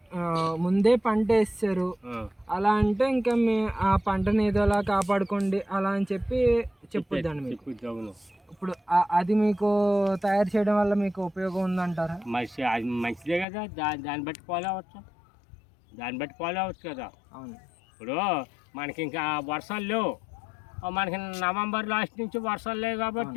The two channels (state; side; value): drops out; right; at 13.5 s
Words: ముందే పంట వేస్తారు అలా అంటే ఇంకా ఆ పంటని ఏదోలా కాపాడుకోండి అలా అని చెప్పి చెప్పొద్దండి మీకు. ఇప్పుడు అది మీకు తయారు చేయడం వల్ల మీకు ఉపయోగం ఉందంటారా? మంచిదే కదా. దాన్ని బట్టి ఫాలో అవ్వచ్చు. దాన్ని బట్టి ఫాలో అవచ్చు కదా. అవును. ఇప్పుడు మనకి ఇంకా వర్షాలు లేవు, మనకి నవంబర్ లాస్ట్ నుంచి వర్షాలు లేవు